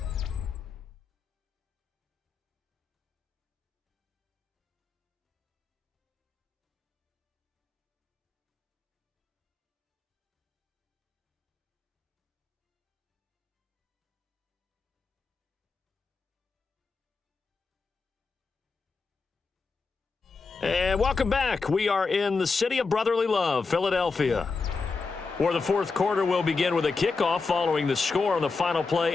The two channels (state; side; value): quieter; right; 4.4 dB